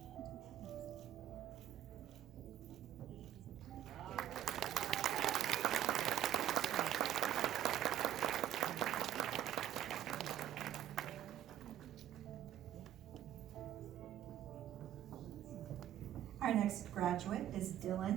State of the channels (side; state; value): left; quieter; 11.5 dB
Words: Our next graduate is